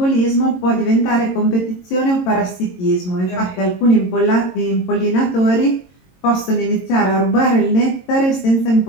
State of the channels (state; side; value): late; right; 22 ms